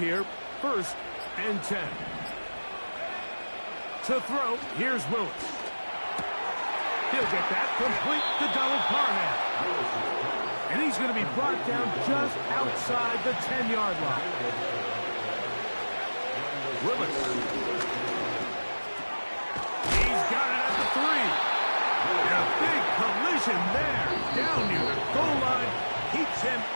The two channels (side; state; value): both; inverted; correlation -1.00